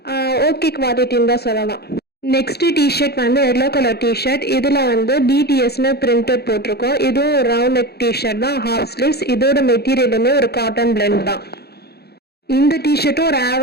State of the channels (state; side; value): late; right; 0.47 ms